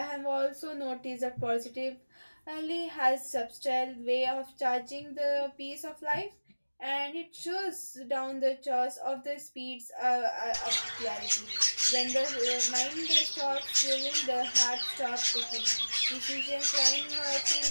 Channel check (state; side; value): inverted; both; correlation -1.00